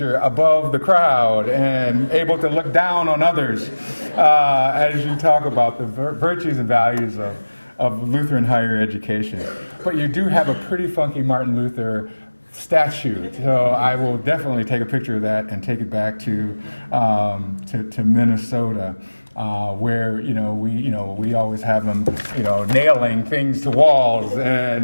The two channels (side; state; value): both; inverted; correlation -1.00